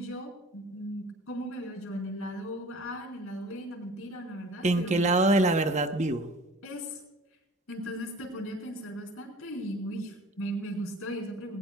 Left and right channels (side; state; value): both; normal; correlation 0.45